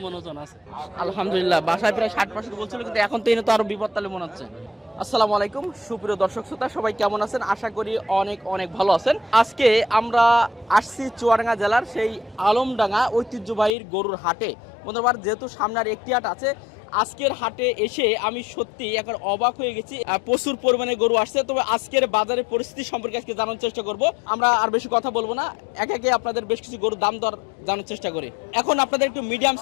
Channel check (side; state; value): right; drops out; at 13.7 s